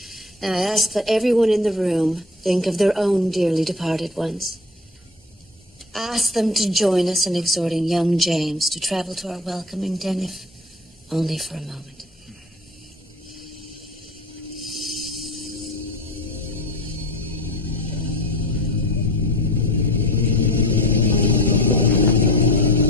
Now I ask that everyone in the room think of their own dearly departed ones. Ask them to join us in exhorting young James to travel to our welcoming den, if only for a moment.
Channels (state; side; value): normal; both; correlation 0.38